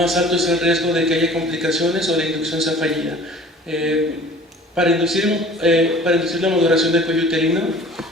alto es el riesgo de que haya complicaciones o la inducción sea fallida. Para inducir la maduración del cuello uterino,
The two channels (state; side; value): normal; both; correlation 0.47